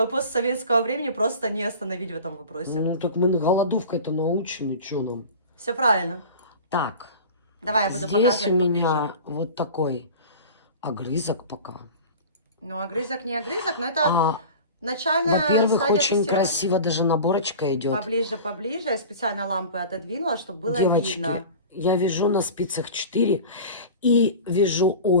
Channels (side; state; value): both; inverted; correlation -0.36